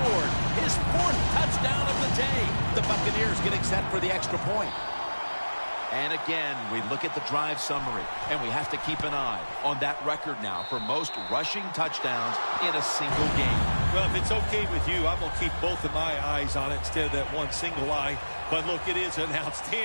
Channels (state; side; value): inverted; both; correlation -1.00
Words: his 4th touchdown of the day. The Buccaneers getting set for the extra point. And again, we look at the drive summary, and we have to keep an eye on that record now for most rushing touchdowns in a single game. Well, if it's okay with you, I'm going to keep both of my eyes on it instead of that one single eye. But look, it is an